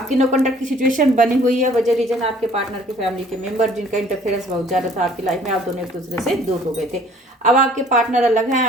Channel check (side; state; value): both; normal; correlation 0.55